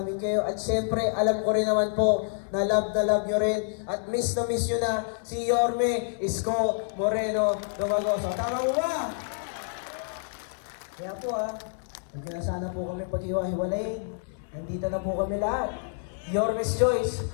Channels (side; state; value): right; silent; 59 dB below the other